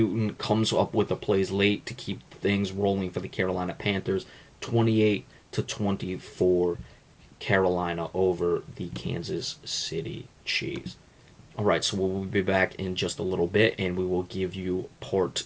comes up with the plays late to keep things rolling for the Carolina Panthers. 28-24. Carolina over the Kansas City Chiefs. All right, so we'll be back in just a little bit, and we will give you part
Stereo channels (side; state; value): both; identical; correlation 1.00